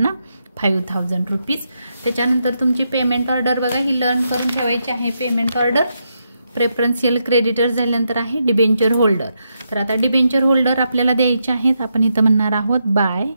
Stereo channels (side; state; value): both; inverted; correlation -0.82